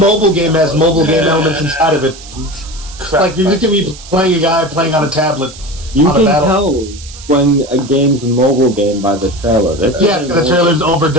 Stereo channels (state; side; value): noise; right; hiss, 17 dB below the sound